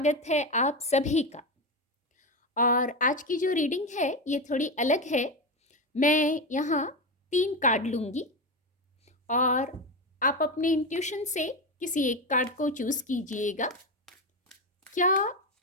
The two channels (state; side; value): normal; both; correlation 0.16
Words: है आप सभी का। और आज की जो रीडिंग है ये थोड़ी अलग है। मैं यहाँ 3 कार्ड लूँगी और आप अपने इंट्यूशन से किसी एक कार्ड को चूज़ कीजिएगा। क्या